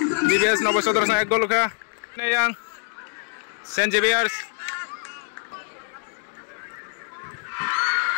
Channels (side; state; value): right; silent; 56 dB below the other